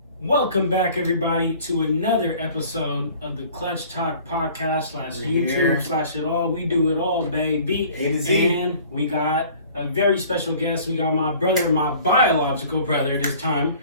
Welcome back, everybody, to another episode of the Clutchtalk podcast / YouTube / it all. We do it all, baby. A to Z. And we got a very special guest. We got my brother, my biological brother this time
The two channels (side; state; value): both; inverted; correlation -0.50